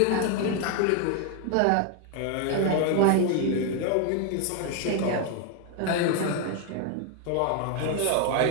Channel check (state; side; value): different; both; correlation 0.00